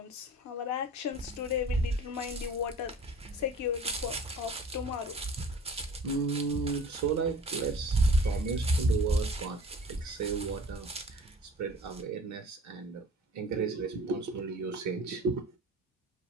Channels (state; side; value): normal; both; correlation 0.44